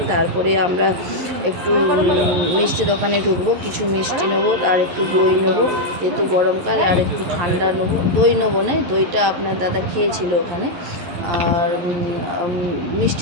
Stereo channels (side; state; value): left; late; 11 ms